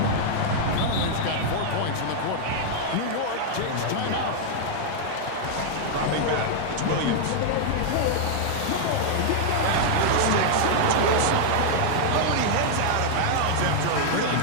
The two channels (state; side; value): different; both; correlation -0.01